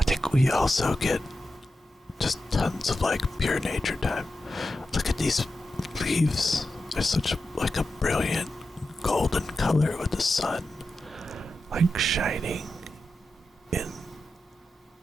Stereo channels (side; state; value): both; normal; correlation 0.90